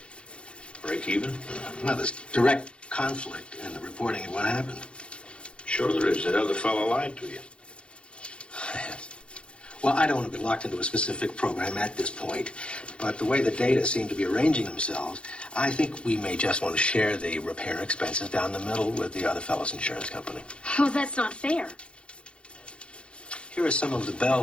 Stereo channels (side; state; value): right; late; 0.058 ms